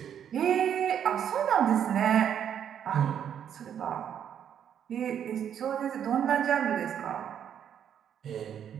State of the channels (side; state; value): left; quieter; 9.0 dB